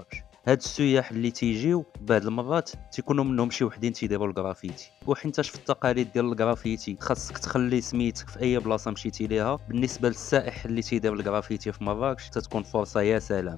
هاد السياح اللي تيجيو بعض المرات تيكونوا منهم شي وحدين تيديروا الجرافيتي، وحينتاش في التقاليد ديال الجرافيتي خاصك تخلي سميتك في اي بلاصه مشيتي ليها. بالنسبه للسائح اللي تيدير الجرافيتي في مراكش تتكون فرصه يا سلام.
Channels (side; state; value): right; quieter; 10.4 dB